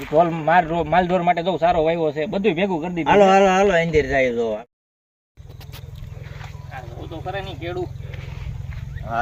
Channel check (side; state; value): both; identical; correlation 1.00